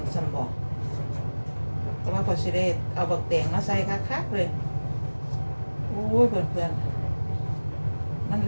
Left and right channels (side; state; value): both; inverted; correlation -1.00